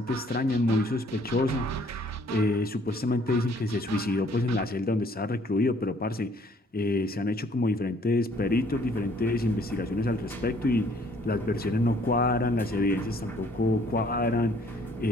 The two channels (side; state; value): both; normal; correlation 0.61